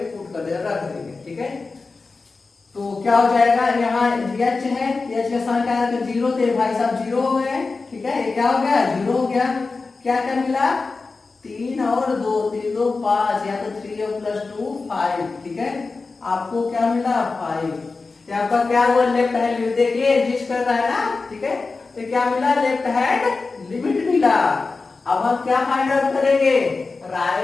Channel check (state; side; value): quieter; right; 4.0 dB